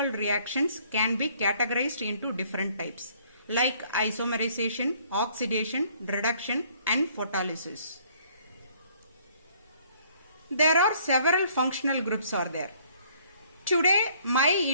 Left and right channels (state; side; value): inverted; both; correlation -0.61